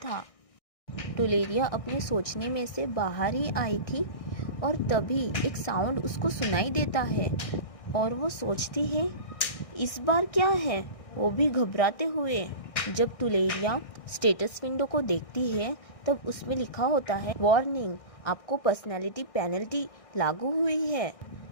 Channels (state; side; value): late; right; 1.6 ms